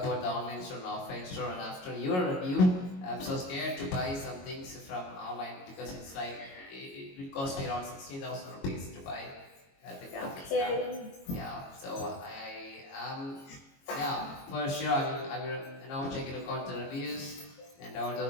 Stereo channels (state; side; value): late; right; 22 ms